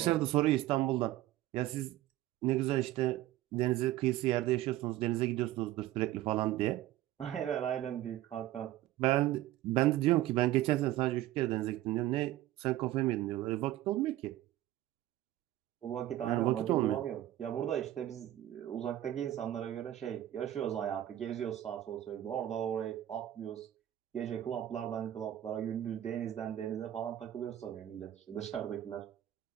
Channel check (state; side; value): quieter; left; 13.9 dB